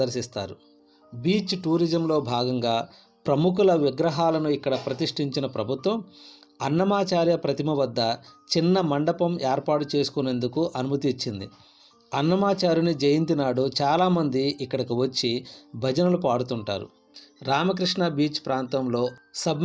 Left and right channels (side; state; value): both; identical; correlation 1.00